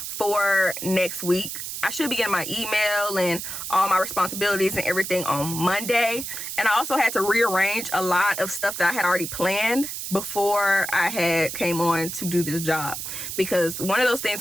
for next week. I should be getting my email and all my responsibilities and everything on Monday. And I also had to rearrange a lot of stuff that I had already planned before I had came on to do this job. Because one of those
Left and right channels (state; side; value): noise; right; hiss, 6 dB below the sound